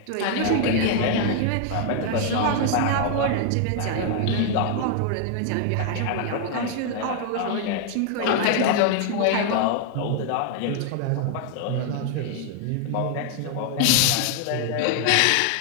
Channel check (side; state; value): both; different; correlation 0.00